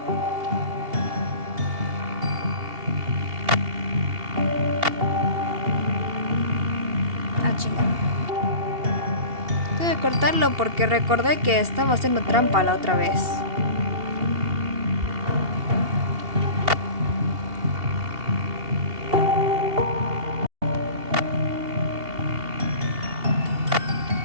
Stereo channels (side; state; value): left; late; 2.8 ms